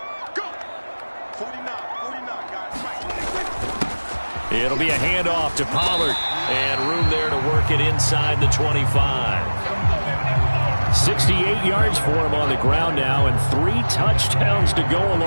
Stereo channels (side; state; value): both; inverted; correlation -1.00